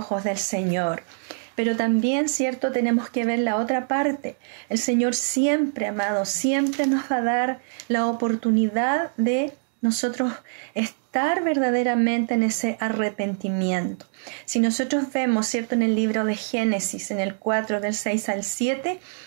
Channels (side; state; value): left; silent; digital silence